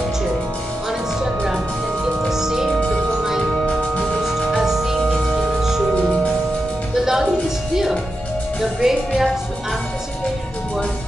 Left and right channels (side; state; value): both; normal; correlation 0.88